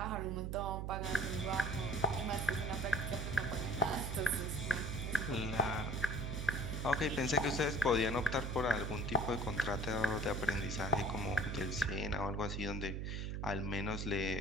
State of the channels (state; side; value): noise; right; hum, 3 dB below the sound